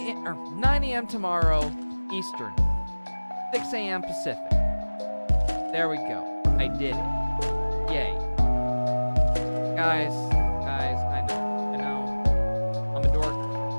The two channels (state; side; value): inverted; both; correlation -1.00